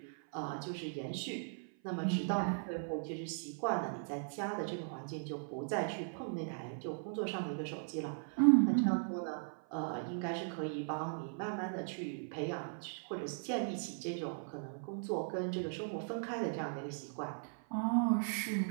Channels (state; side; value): silent; left; 52 dB below the other